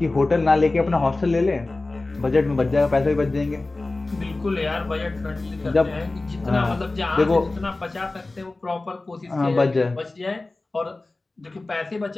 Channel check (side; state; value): right; quieter; 3.1 dB